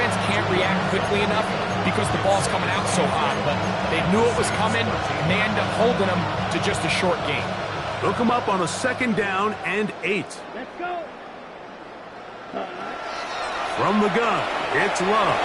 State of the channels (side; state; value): both; identical; correlation 1.00